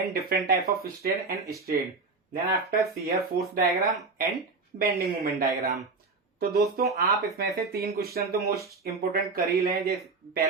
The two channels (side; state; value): left; quieter; 4.0 dB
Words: different type of strain and strain. Then after shear force diagram and bending moment diagram. तो दोस्तों आप इसमें से 3 question तो most important कर ही लें। जैसे